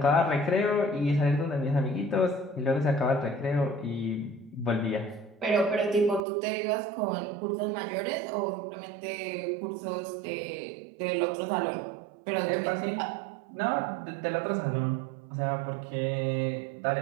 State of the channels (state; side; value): drops out; left; at 6.2 s